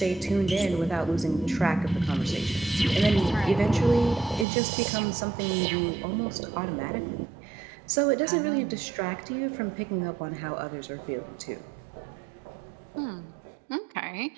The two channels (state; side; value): drops out; left; at 4.5 s